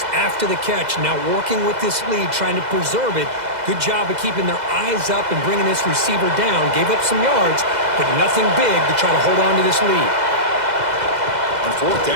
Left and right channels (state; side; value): late; left; 2.0 ms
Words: after the catch. Now working with this lead, trying to preserve it. Good job of keeping their eyes up and bringing this receiver down. Gave up some yards, but nothing big to try to hold on to this lead. On 4th